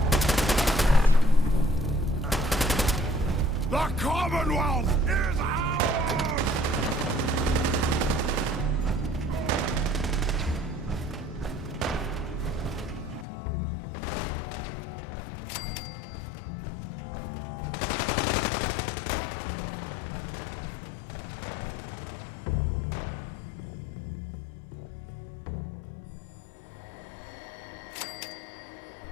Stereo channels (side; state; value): right; drops out; at 13.2 s